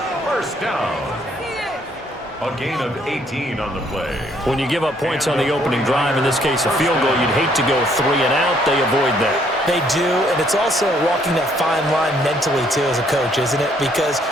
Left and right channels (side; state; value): both; normal; correlation 0.66